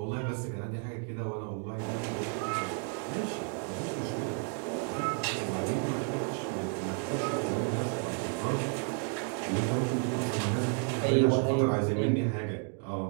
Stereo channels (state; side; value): quieter; left; 38.5 dB